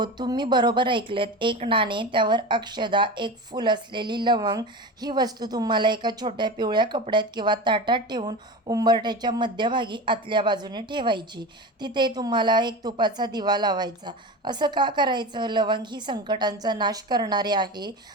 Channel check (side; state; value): both; normal; correlation 0.27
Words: तुम्ही बरोबर ऐकलेत. 1 नाणे, त्यावर अक्षदा, 1 फूल असलेली लवंग. ही वस्तू तुम्हाला एका छोट्या पिवळ्या कपड्यात किंवा ताटात ठेवून उंबरठ्याच्या मध्यभागी आतल्या बाजूने ठेवायची. तिथे तुम्हाला 1 तुपाचा दिवा लावायचा. असं का करायचं? लवंग ही संकटांचा नाश करणारे आहे,